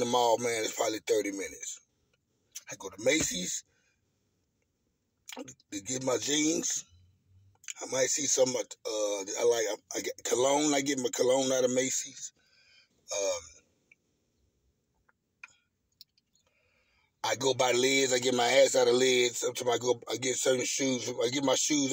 mall, man, is probably 30 minutes. I go to Macy's to get my jeans. I might see some. I get cologne. I get my cologne out of Macy's. I go by Lids. I get my ass out of Lids. Sometimes I get certain shoes. I get my shoes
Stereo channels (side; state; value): both; identical; correlation 1.00